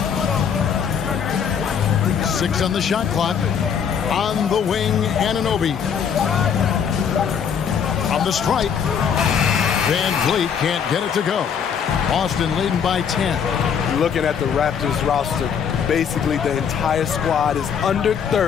6 on the shot clock. On the wing, Anunoby. On the stripe. Van Vliet can't get it to go. Boston leading by 10. Looking at the Raptors roster, basically the entire squad is under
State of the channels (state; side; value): quieter; right; 7.4 dB